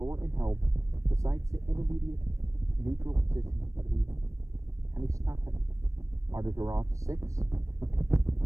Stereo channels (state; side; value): late; left; 0.15 ms